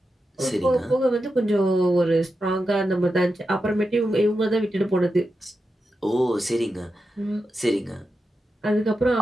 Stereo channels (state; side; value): normal; both; correlation 0.89